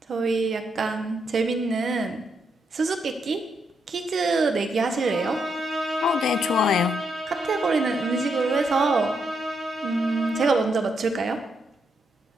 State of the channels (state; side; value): normal; both; correlation 0.79